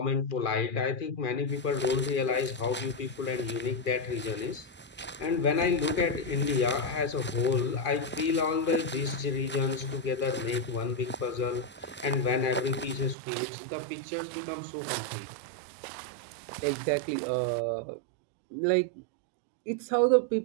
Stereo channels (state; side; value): drops out; left; at 13.2 s